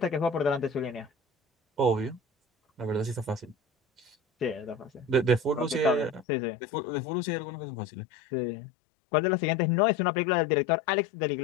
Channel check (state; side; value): drops out; right; at 6.2 s